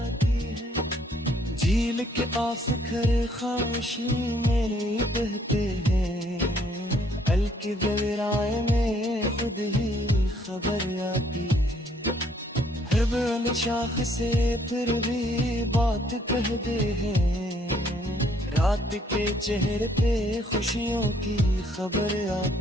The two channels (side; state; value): both; normal; correlation 0.66